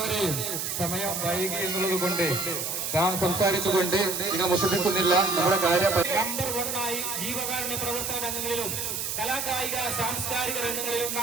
സമയം വൈകി എന്നുള്ളത് കൊണ്ട് ഞാൻ സംസാരിച്ചുകൊണ്ട് നിങ്ങൾ മുഷിപ്പിക്കുന്നില്ല. നമ്മുടെ കാര്യം നമ്പർ 1 ജീവകാരുണ്യ പ്രവർത്തന രംഗങ്ങളിലും കലാകായിക സാംസ്കാരിക രംഗങ്ങളിലും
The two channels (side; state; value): right; noise; hiss, 2 dB below the sound